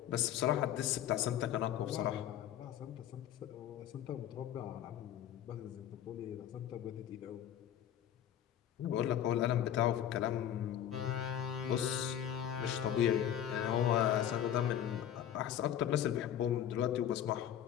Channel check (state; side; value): quieter; right; 10.5 dB